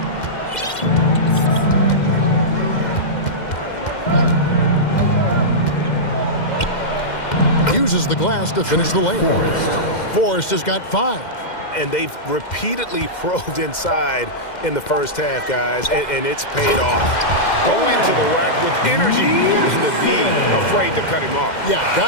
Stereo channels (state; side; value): late; right; 2.1 ms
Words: Uses the glass to finish the lane. Forrest has got 5. And they've repeatedly probed inside in the first half, guys, and it's paid off. Go into the rack with energy, and the D afraid to cut him off. Yeah,